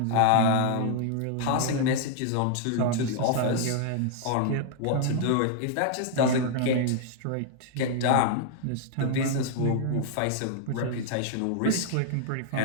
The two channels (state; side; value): different; both; correlation -0.01